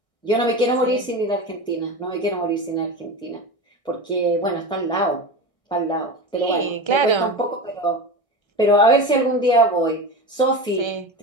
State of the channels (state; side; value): late; right; 1.6 ms